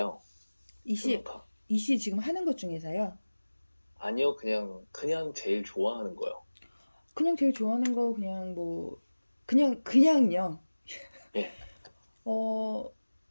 두 명 이씨, 다. 이씨 지금 하는 것 중에서요. 아니요, 그냥 제일 좋아하는 거요. 그냥 제일 좋아하는 거 그냥 뭐 그냥요. 예. 어,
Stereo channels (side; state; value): both; inverted; correlation -1.00